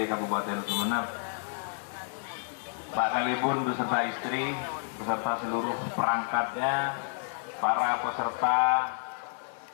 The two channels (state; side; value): silent; right; digital silence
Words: Kabupaten Sumeneb, Pak Kalibun beserta istri, beserta seluruh perangkatnya, para peserta